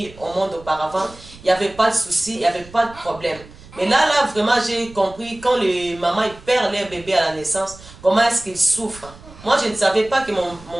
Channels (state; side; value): noise; right; rumble, 20 dB below the sound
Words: au monde auparavant, il n'y avait pas de souci, il n'y avait pas de problème. Mais là, vraiment, j'ai compris quand les mamans ils perdent leur bébé à la naissance, comment est-ce qu'ils souffrent. Moi, je ne savais pas que